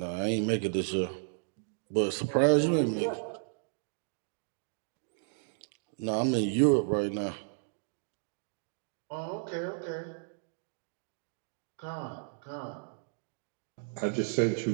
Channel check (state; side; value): silent; left; digital silence